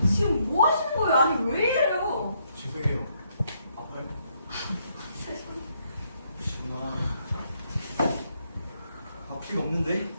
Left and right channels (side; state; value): both; inverted; correlation -0.73